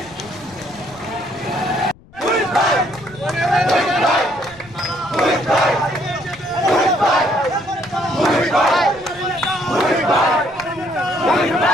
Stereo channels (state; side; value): noise; left; rumble, 24 dB below the sound